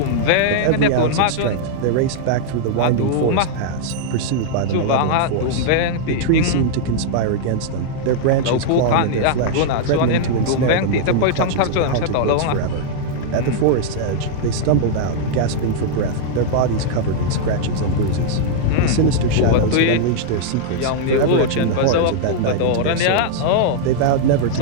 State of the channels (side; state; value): both; different; correlation -0.01